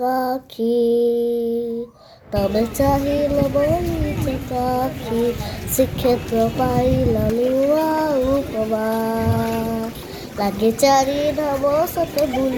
ତମେ ଚାହିଁଲ ବୋଲି ଚକାଖି, ଶ୍ରୀକ୍ଷେତ୍ର ପାଇଲ ନୂଆ ଉପମା। ଲାଗେ ଚାରି ଧାମ ସତେ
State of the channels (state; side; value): identical; both; correlation 1.00